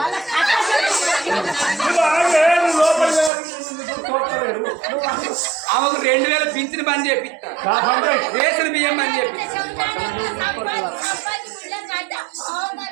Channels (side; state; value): left; drops out; at 3.3 s